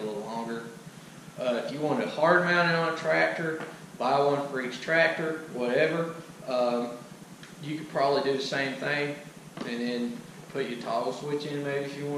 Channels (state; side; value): identical; both; correlation 1.00